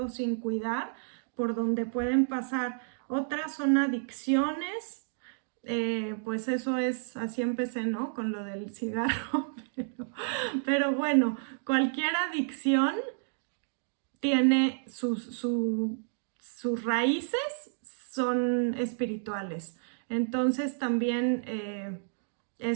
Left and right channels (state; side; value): silent; left; digital silence